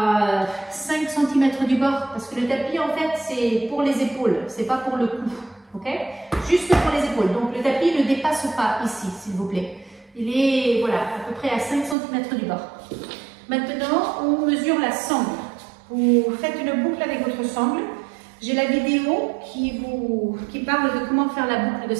5 cm du bord, parce que le tapis, en fait, c'est pour les épaules, c'est pas pour le cou, ok? Juste pour les épaules. Donc le tapis ne dépasse pas ici, s'il vous plaît. Il est, voilà, à peu près à 5 cm du bord. Maintenant, on mesure la sangle. Vous faites une boucle avec votre sangle. J'ai la vidéo qui parle de comment faire la boucle de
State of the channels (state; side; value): drops out; left; at 12.0 s